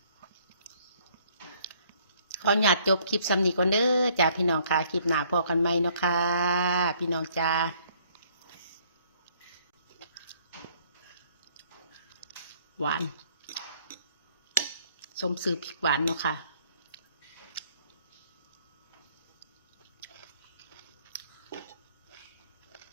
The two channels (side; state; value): both; inverted; correlation -0.63